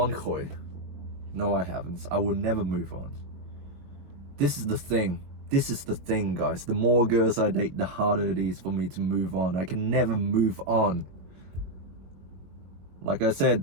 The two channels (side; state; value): left; late; 21 ms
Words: Khoi. No, I haven't. I will never move on. This is the thing. This is the thing, guys. The more girls I date, the harder it is for me to move on. I can never move on. Like I said,